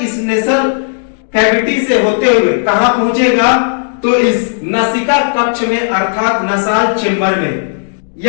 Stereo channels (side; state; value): right; silent; digital silence